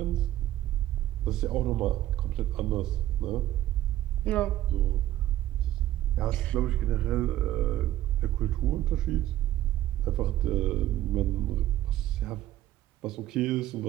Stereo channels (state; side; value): quieter; left; 13.7 dB